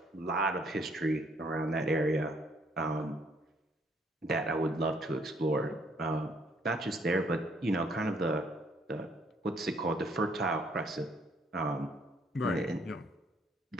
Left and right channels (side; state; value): both; normal; correlation 0.65